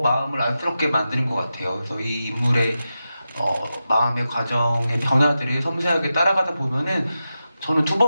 안쓰럽게 만드는 것 같아요. 그래서 이 인물의 마음의 과정의 변화들을 섬세하게 따라가다 보면은 저는 두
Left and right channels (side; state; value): both; inverted; correlation -0.91